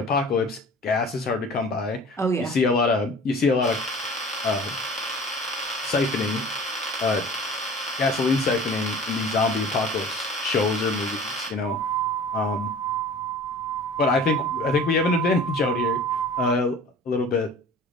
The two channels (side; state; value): both; normal; correlation 0.43